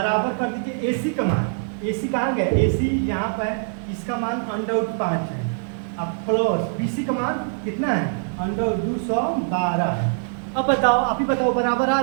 कर दीजिए ए सी का मान, ए सी कहाँ गया, ए सी यहाँ पर है, इसका मान अंडर 5 है, अब प्लस बी सी का मान कितना है अंडर 212 है। अब बताओ, आप ही बताओ बराबर आ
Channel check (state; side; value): silent; left; digital silence